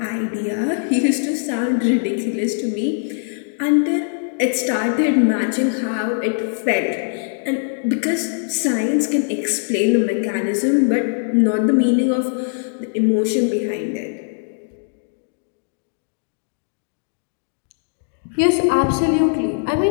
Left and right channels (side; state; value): right; silent; digital silence